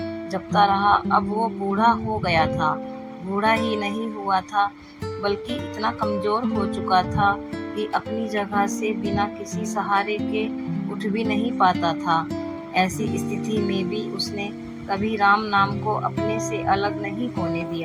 जपता रहा, अब वो बूढ़ा हो गया था। बूढ़ा ही नहीं हुआ था, बल्कि इतना कमज़ोर हो चुका था कि अपनी जगह से बिना किसी सहारे के उठ भी नहीं पाता था। ऐसी स्थिति में भी उसने कभी राम नाम को अपने से अलग नहीं होने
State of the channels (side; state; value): both; identical; correlation 1.00